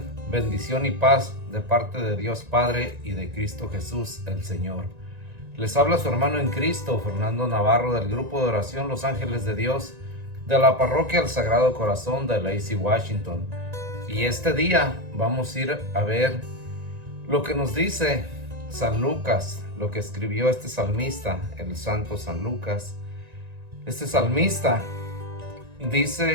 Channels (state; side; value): late; left; 1.9 ms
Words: bendición y paz de parte de Dios Padre y de Cristo Jesús el Señor. Les habla su hermano en Cristo, Fernando Navarro, del grupo de oración Los Ángeles de Dios, de la parroquia El Sagrado Corazón de Lacey, Washington. Y este día vamos a ir a ver lo que nos dice San Lucas, lo que escribió este salmista, el santo San Lucas. Este salmista